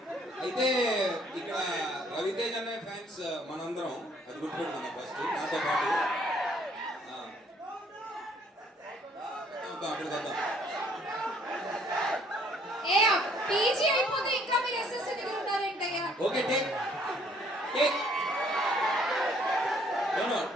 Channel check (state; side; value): normal; both; correlation 0.62